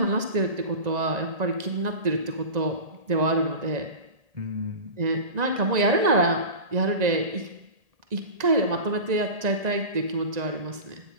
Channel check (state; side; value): late; left; 1.9 ms